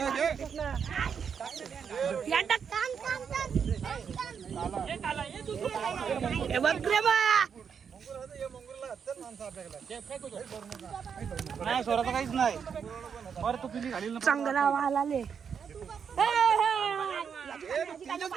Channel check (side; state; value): left; quieter; 6.9 dB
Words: नाही सोडायचं काहीच नाही बरं तू पिली घालील ना चांगला वाल आले